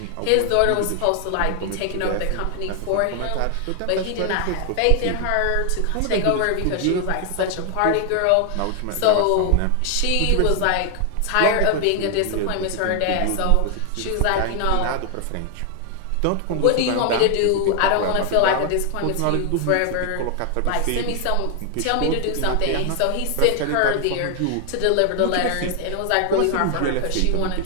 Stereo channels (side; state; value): both; different; correlation 0.00